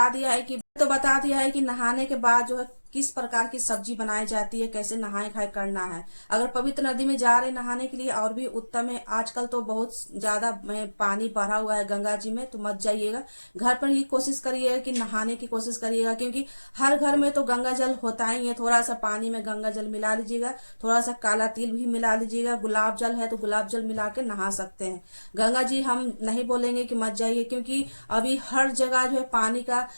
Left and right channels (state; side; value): inverted; both; correlation -1.00